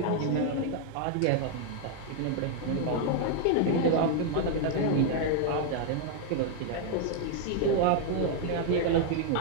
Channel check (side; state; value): both; different; correlation 0.00